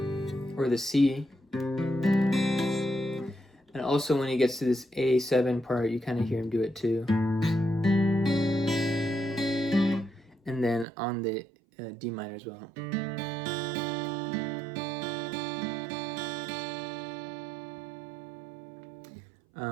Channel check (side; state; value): left; drops out; at 10.9 s